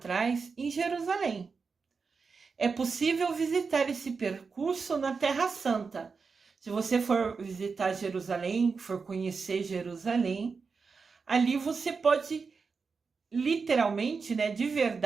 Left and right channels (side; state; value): left; quieter; 5.0 dB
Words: em Jerusalém. É possível visitar esse percurso na Terra Santa. Se você for visitar Jerusalém, for conhecer Jerusalém, ali você pode literalmente, né, de